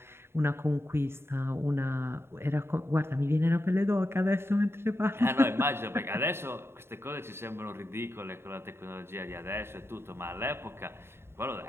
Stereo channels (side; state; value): left; late; 0.12 ms